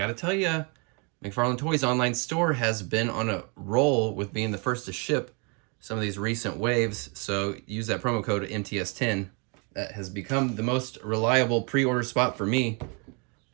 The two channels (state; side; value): quieter; left; 34.1 dB